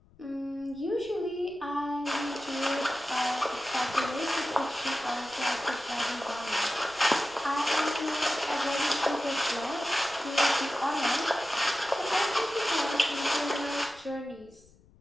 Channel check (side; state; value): left; noise; rumble, 28 dB below the sound